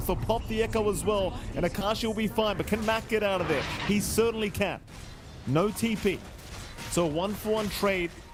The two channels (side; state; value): both; identical; correlation 1.00